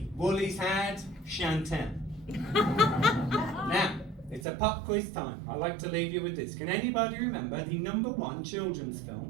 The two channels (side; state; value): left; drops out; at 4.5 s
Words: Woolies had Chantel. Now, it's a pop quiz time. I like to leave you with this. Can anybody remember the #1 children's